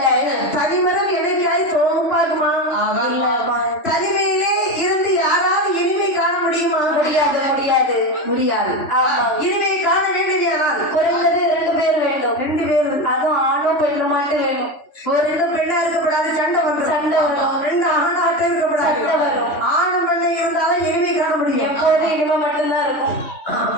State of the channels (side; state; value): right; late; 3.5 ms